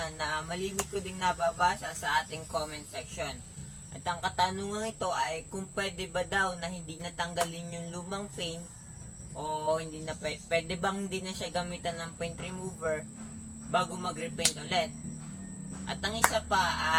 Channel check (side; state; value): both; identical; correlation 1.00